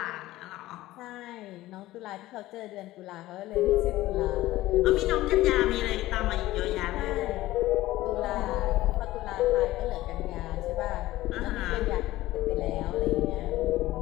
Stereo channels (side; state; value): right; quieter; 16.5 dB